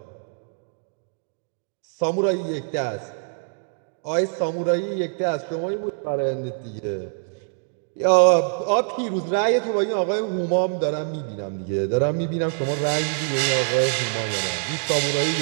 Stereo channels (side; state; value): left; silent; digital silence